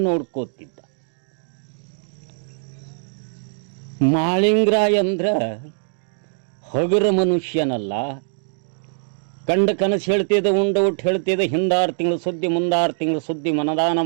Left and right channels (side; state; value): left; silent; digital silence